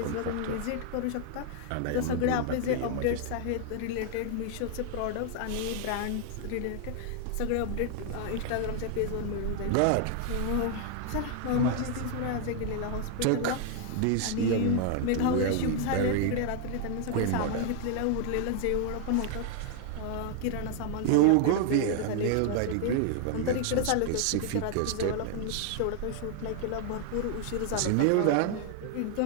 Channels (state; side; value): different; both; correlation 0.00